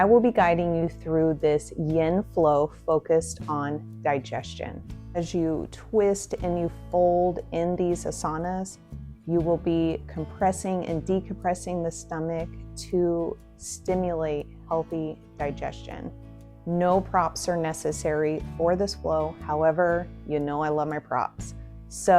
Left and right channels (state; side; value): identical; both; correlation 1.00